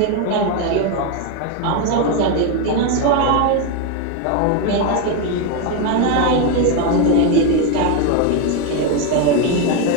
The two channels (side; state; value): both; different; correlation 0.02